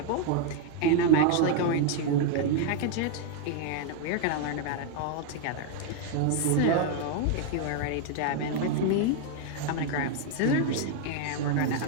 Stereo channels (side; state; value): both; different; correlation 0.01